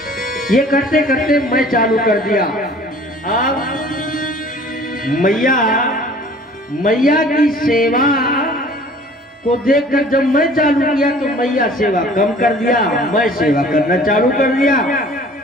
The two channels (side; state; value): both; normal; correlation 0.50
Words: ये करते करते मैं चालू कर दिया। अब मैया की सेवा को देखकर जब मैं चालू किया तो मैया सेवा कम कर दिया, मैं सेवा करना चालू कर दिया।